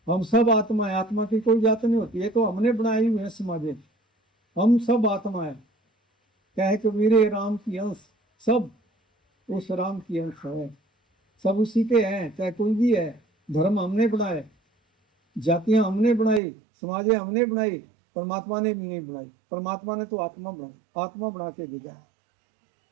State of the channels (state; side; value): drops out; left; at 16.4 s